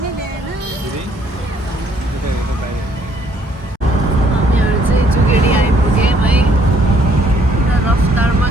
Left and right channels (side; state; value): both; normal; correlation 0.65